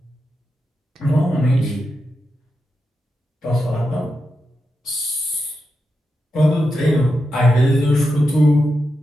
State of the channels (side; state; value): both; normal; correlation 0.87